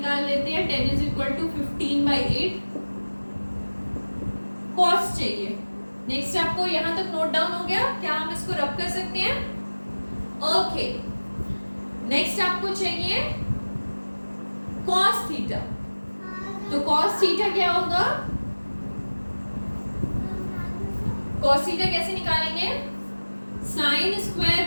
लेते हैं। 10 इज इक्वल टू 15/8 cos चाहिए। नेक्स्ट आपको यहाँ तक नोट डाउन हो गया, क्या हम इसको रब कर सकते हैं, ओके। नेक्स्ट आपको चाहिए cos थीटा, तो cos थीटा क्या होगा, cos थीटा कैसे निकालेंगे, sin square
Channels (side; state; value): both; inverted; correlation -1.00